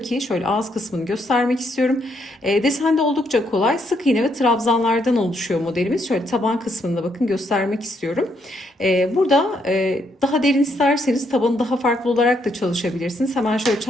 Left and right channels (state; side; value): normal; both; correlation 0.75